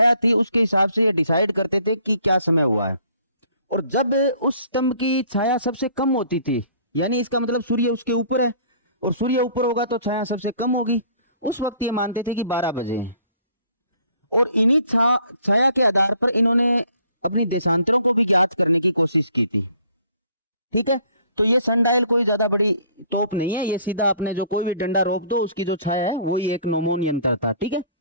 थी उसके हिसाब से ये डिसाइड करते थे कि क्या समय हुआ है। और जब उस स्तंभ की छाया सबसे कम होती थी, यानी इसका मतलब सूर्य उसके ऊपर है और सूर्य ऊपर होगा तो छाया सबसे कम होगी, उस वक्त ये मानते थे कि 12 बजे। और इन्हीं छाया के आधार पर इन्होंने अपनी देशांतरों को भी ज्ञात करने की कोशिश की थी। ठीक है, तो ये सनडायल कोई ज्यादा बड़ी तोप नहीं है, ये सीधा अपने जो कोई भी डंडा रोक दो उसकी जो छाया है वही एक नोमोन यंत्र था। ठीक है,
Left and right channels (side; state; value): both; inverted; correlation -0.57